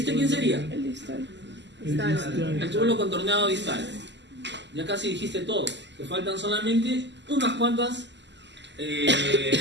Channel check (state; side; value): late; left; 0.51 ms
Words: quién sería? El distal. El túbulo contorneado distal. Ya casi dijiste todo. Te faltan solamente unas cuantas